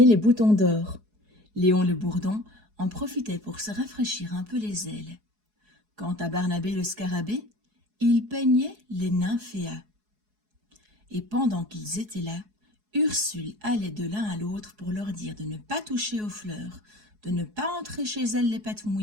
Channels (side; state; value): left; late; 4.7 ms